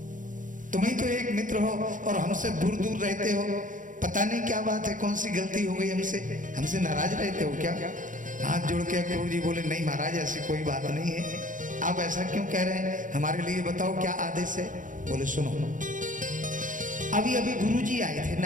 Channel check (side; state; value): left; late; 0.38 ms